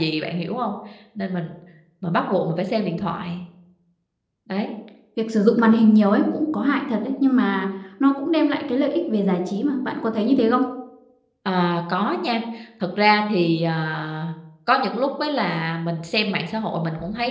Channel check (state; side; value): identical; both; correlation 1.00